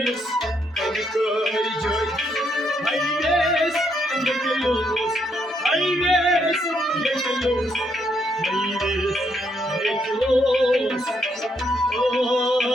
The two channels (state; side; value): normal; both; correlation 0.75